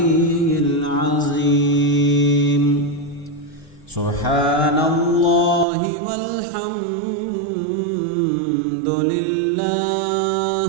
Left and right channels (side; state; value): left; drops out; at 5.7 s